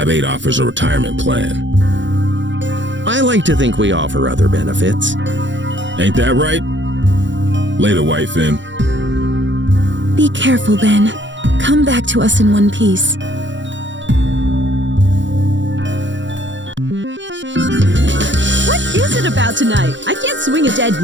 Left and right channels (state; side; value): late; left; 0.54 ms